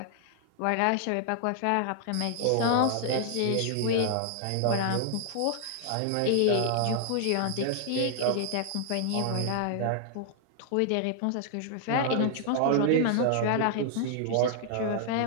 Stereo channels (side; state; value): both; different; correlation -0.01